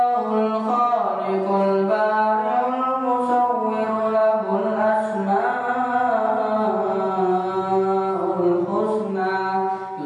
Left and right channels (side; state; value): both; identical; correlation 1.00